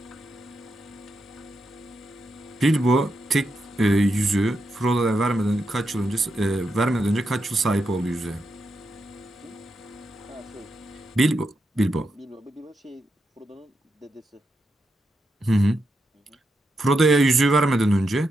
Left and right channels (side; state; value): both; normal; correlation 0.85